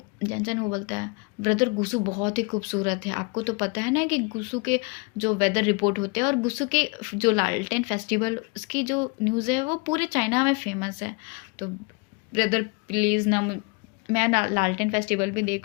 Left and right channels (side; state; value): right; quieter; 30.1 dB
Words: जैनसन वो बोलता है ब्रदर गुसू बहुत ही खूबसूरत है, आपको तो पता है ना कि गुसू के जो वेदर रिपोर्ट होते हैं और गुसू के जो लालटेन फेस्टिवल उसकी जो न्यूज़ है वो पूरे चाइना में फेमस है। तो ब्रदर प्लीज़ ना मैं लालटेन फेस्टिवल भी